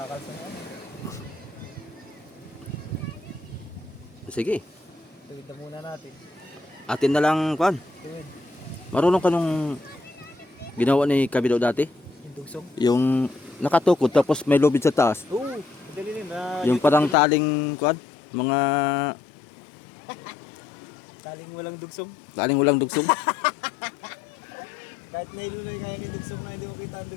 na. Sige, Tuwid na muna natin. atin na lang kuan. Tuwid. Marunong ka nung ginawa ni Kabido dati? Yung dugsong. Yung nakatukod tapos may lubid sa taas. Oo, madali rin. Yung parang taling kuan, mga Taling walang dugsong. taling walang dugsong. Kahit nailuloy kaya ni dugsong na hindi mo kita ang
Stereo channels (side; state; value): right; drops out; at 17.2 s